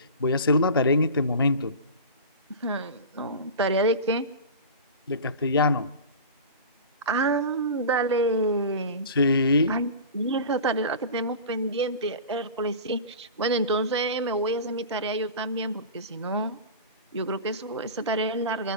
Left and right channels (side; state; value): both; inverted; correlation -0.33